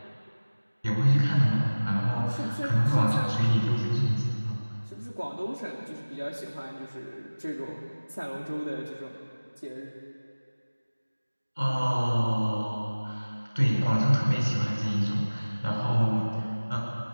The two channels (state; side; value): inverted; both; correlation -1.00